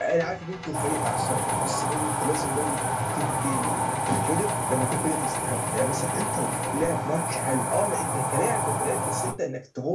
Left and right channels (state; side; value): identical; both; correlation 1.00